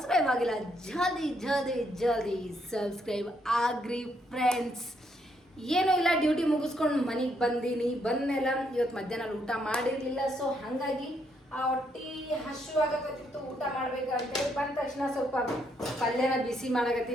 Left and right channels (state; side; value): normal; both; correlation 0.74